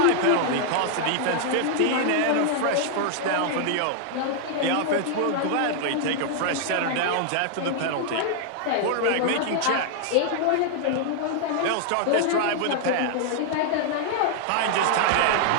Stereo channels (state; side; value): different; both; correlation 0.00